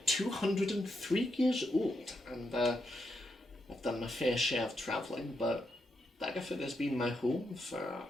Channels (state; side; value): normal; both; correlation 0.82